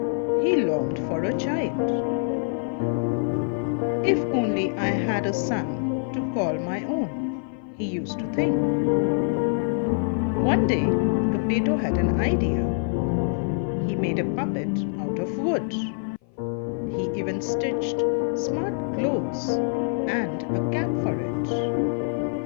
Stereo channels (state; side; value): silent; right; 56 dB below the other